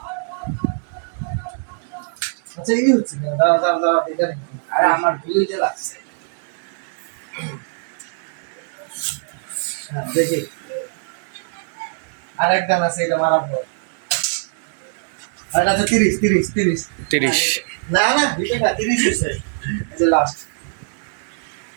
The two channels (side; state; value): left; silent; digital silence